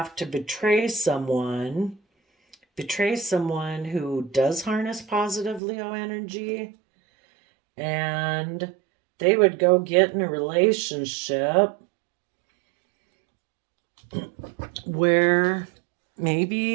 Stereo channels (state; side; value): drops out; left; at 5.6 s